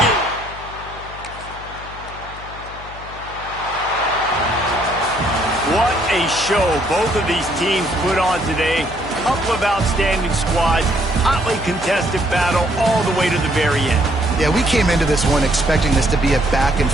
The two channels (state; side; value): noise; left; hum, 16 dB below the sound